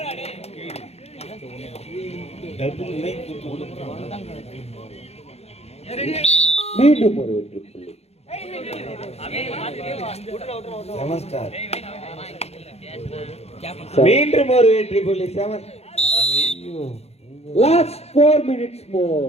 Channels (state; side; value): late; right; 0.30 ms